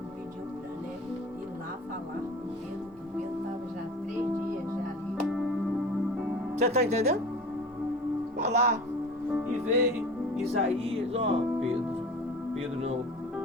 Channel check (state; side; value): normal; both; correlation 0.38